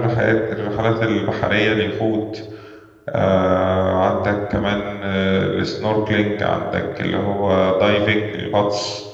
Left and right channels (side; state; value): both; identical; correlation 1.00